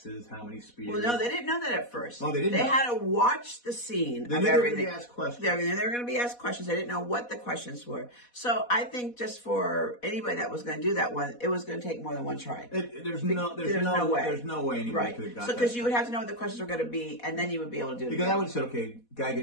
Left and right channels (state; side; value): late; right; 4.1 ms